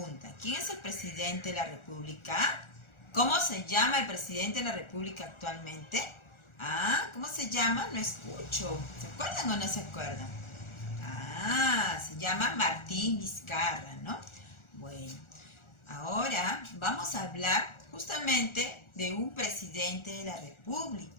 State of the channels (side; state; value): right; late; 1.4 ms